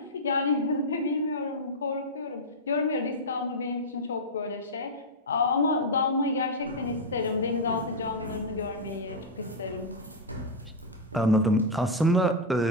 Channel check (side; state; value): both; normal; correlation -0.02